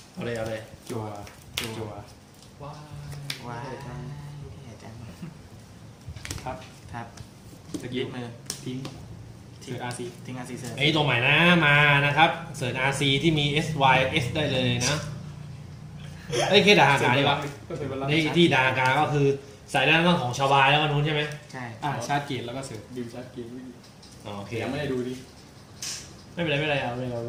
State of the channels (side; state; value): both; identical; correlation 1.00